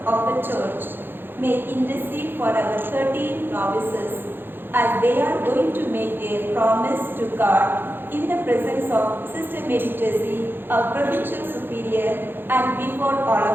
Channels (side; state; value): left; late; 0.10 ms